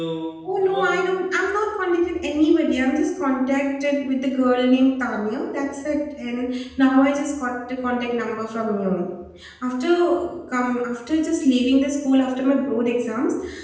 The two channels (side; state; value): both; identical; correlation 1.00